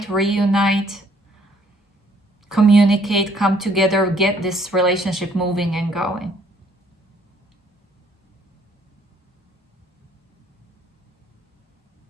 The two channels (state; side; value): normal; both; correlation 0.64